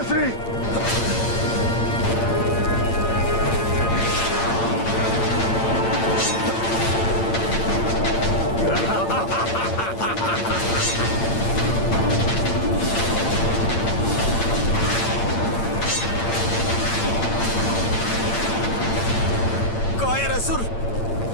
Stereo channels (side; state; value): right; late; 8.8 ms